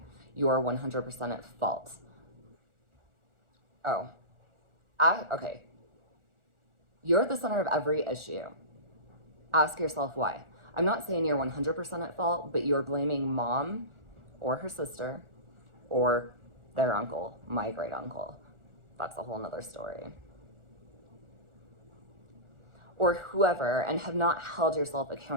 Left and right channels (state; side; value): late; left; 1.4 ms